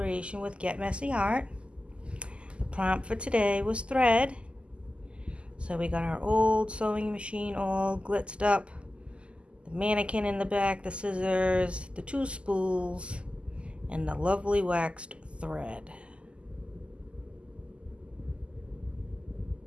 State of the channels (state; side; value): late; left; 0.053 ms